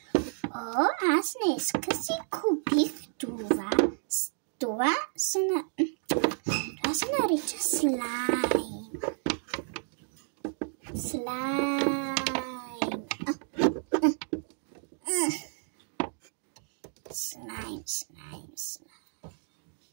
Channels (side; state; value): left; silent; 57 dB below the other